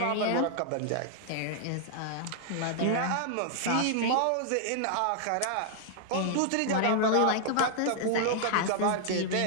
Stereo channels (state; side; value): different; both; correlation -0.01